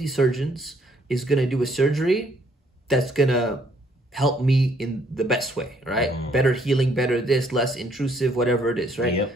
surgeons is going to do a surgery that's going to help me in the best way, right? Better healing, better this, less intrusive, whatever it is, right?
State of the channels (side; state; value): both; normal; correlation 0.66